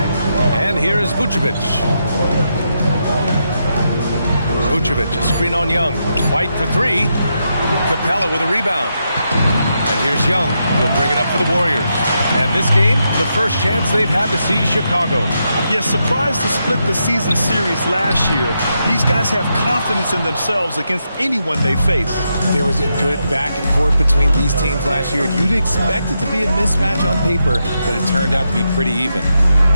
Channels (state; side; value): inverted; both; correlation -0.83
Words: And here's Vucevic. Vucevic, a screen on Young. White for 3. Capella with a rebound. And here's Young. He'll bring it up for the Warriors. And this game, the first chance they've had to see Chicago. Yeah, surprised to split the season series last year. These guys have confidence in themselves against anyone they face. There was a good back and forth between these teams last year. You'd expect it to be a mismatch on paper, but it turned out to be pretty even.